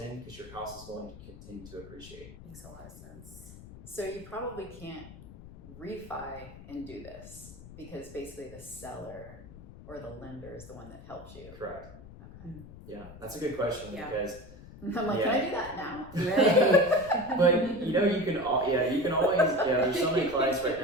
because your house is going to continue to appreciate. Makes a lot of sense. So you probably can't refi and do this because basically the seller or the lender is the one that helps you. Correct. Okay. Yeah, that's a good question Yeah. because I'm like, Yeah. can I do that now? Right. but you can always there's so many clients right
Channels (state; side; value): noise; left; rumble, 16 dB below the sound